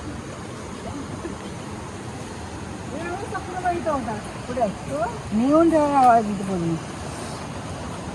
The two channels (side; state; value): both; identical; correlation 1.00